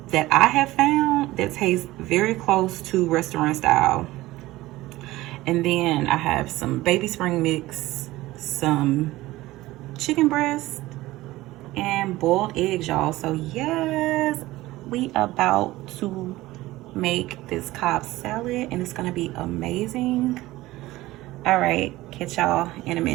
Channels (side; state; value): left; quieter; 17.8 dB